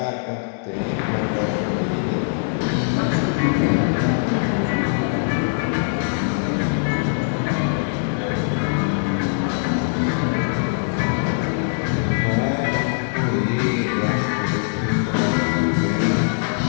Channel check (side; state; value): right; silent; digital silence